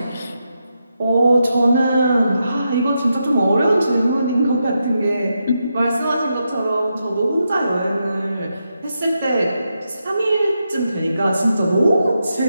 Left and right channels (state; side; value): inverted; both; correlation -0.85